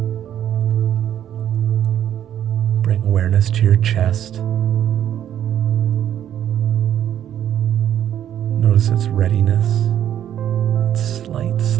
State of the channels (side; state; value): left; quieter; 10.5 dB